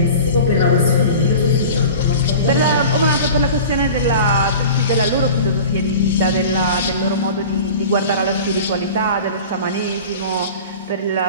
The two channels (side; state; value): both; inverted; correlation -0.37